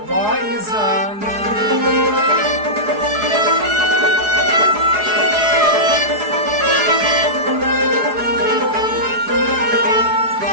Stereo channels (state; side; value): late; left; 4.8 ms